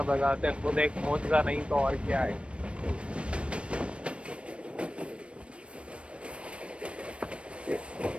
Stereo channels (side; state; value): left; late; 0.060 ms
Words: बजाते खुद एक मोजा नहीं तो और क्या है.